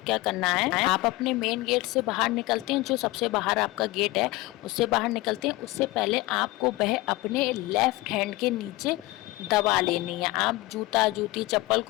क्या करना है, आप अपने मेन गेट से बाहर निकलते हैं, जो सबसे बाहर आपका गेट है उससे बाहर निकलते हैं, उससे पहले आपको वह अपने लेफ्ट हैंड के नीचे दबा लेनी है। आप जूता, जूती, चप्पल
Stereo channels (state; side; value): quieter; right; 20.4 dB